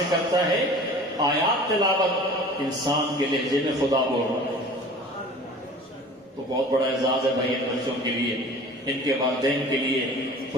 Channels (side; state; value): both; normal; correlation 0.43